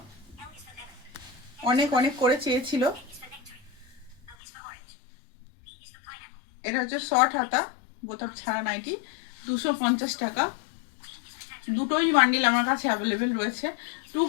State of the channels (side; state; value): right; drops out; at 4.4 s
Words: অনেক অনেক করে চেয়েছিল। এটা হচ্ছে শর্ট হাতা বোতাম ছাড়া নাইটি, 250 টাকা। দুটোই বান্ডিল আমার কাছে অ্যাভেলেবেল রয়েছে।